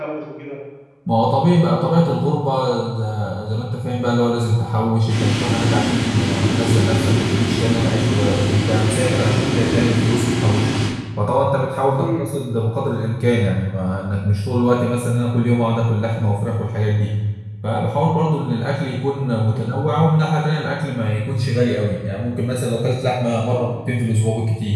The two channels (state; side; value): identical; both; correlation 1.00